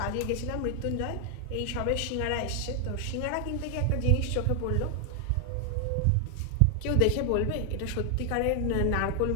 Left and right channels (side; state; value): both; different; correlation 0.00